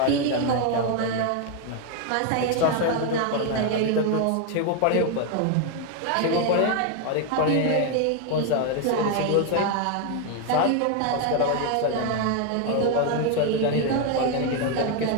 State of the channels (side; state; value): both; different; correlation 0.01